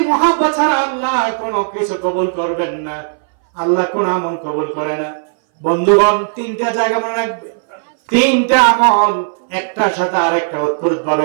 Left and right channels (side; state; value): left; silent; 62 dB below the other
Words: মহব্বত ছাড়া আল্লাহ কোনো কিছু কবুল করবেন না, আল্লাহ কোন আমল কবুল করে না। বন্ধুগণ, তিনটা জায়গা মনে রাখবে, তিনটা আমল একটার সাথে আরেকটা